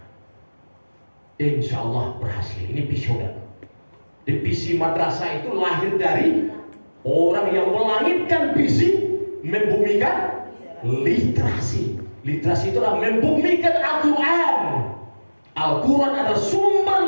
Insya Allah berhasil. Ini visioner. Visi madrasah itu lahir dari orang yang melangitkan visi, membumikan literasi. Literasi itu adalah membumikan Al-Quran. Al-Quran adalah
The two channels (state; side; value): inverted; both; correlation -1.00